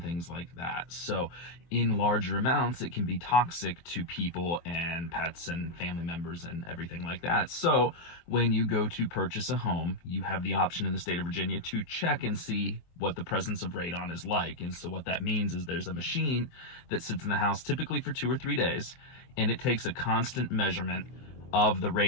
things like that. So in larger amounts, it can be toxic to people and pets and family members and everything like that. So when you go to purchase a home, you have the option in the state of Virginia to check and see what the presence of radon is like. And so what that means is there's a machine that sits in the house typically for 2 or 3 days, and it takes a constant measurement of the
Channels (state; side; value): late; right; 24 ms